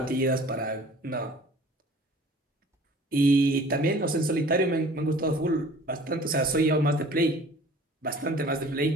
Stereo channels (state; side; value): normal; both; correlation 0.49